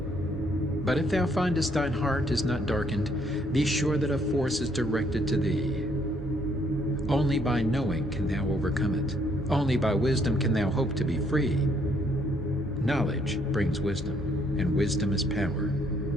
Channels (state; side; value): normal; both; correlation 0.68